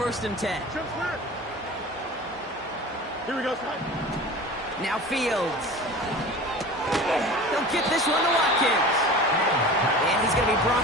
and 10. Here we go, son. Now Fields. He'll get this one to Watkins. And he's going to be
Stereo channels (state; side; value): normal; both; correlation 0.37